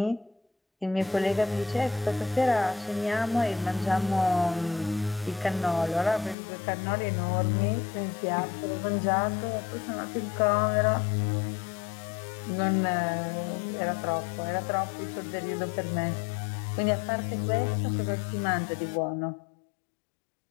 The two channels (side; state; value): right; drops out; at 6.4 s